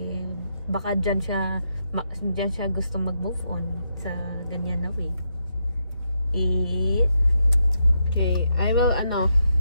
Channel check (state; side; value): inverted; both; correlation -0.81